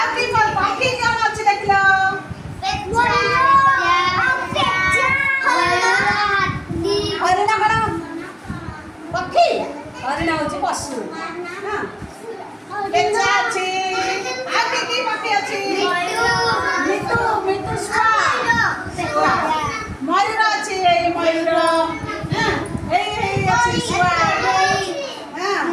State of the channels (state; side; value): identical; both; correlation 1.00